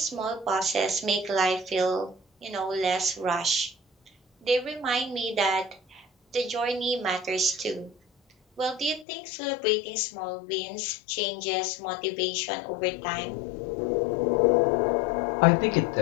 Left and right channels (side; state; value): right; drops out; at 9.1 s